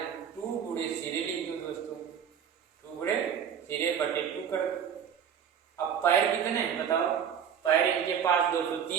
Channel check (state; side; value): quieter; left; 8.1 dB